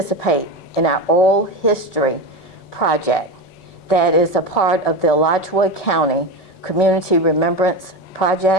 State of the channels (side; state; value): right; late; 5.3 ms